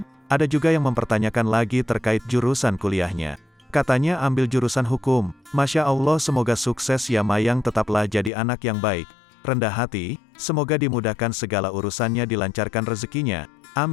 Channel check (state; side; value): drops out; right; at 8.3 s